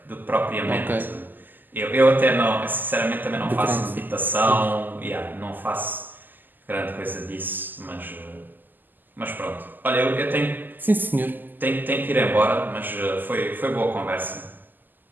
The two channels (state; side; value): late; left; 0.088 ms